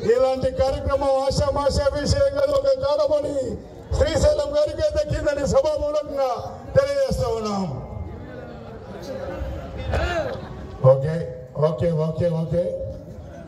ఇలాంటి కార్యక్రమం ఆశామాషా విషయంగా ఒక కాలమని శ్రీశైలం గారికి దక్కిందని సభామూలంగా తెలియజేస్తా ఉన్నాం. Okay okay okay okay.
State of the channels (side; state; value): both; identical; correlation 1.00